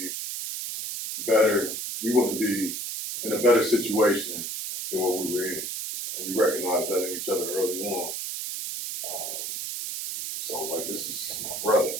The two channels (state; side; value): noise; right; hiss, 5 dB below the sound